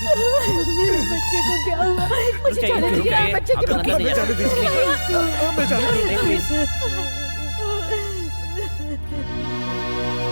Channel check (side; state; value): both; inverted; correlation -1.00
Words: मेरे बच्चे को क्या हुआ? मुझे जाने दीजिए, बच्चे की